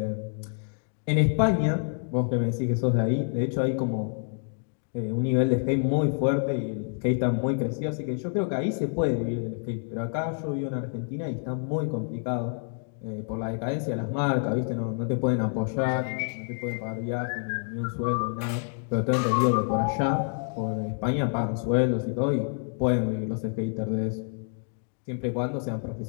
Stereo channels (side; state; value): right; silent; 60 dB below the other